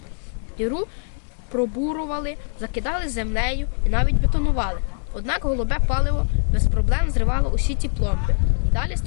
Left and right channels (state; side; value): silent; right; 64 dB below the other